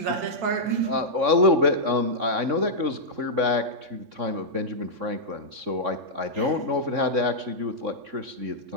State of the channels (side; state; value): left; late; 3.6 ms